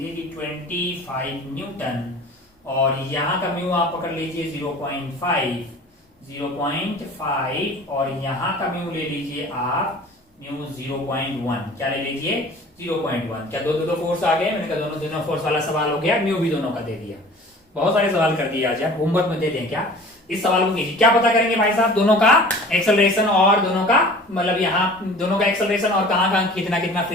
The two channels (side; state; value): both; normal; correlation 0.44